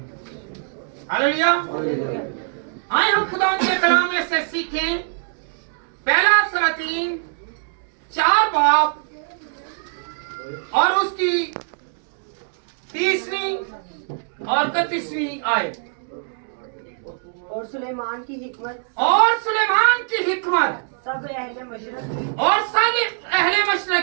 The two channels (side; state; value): left; silent; digital silence